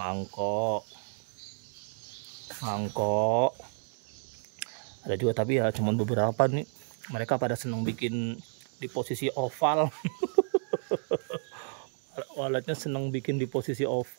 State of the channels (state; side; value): silent; left; 57 dB below the other